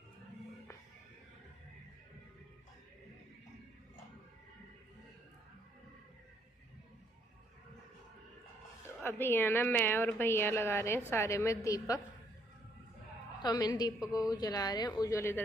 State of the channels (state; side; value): normal; both; correlation 0.69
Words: अभी है ना मैं और भैया लगा रहे हैं सारे में दीपक, तो हम इन दीपकों को जला रहे हैं। उज्जवल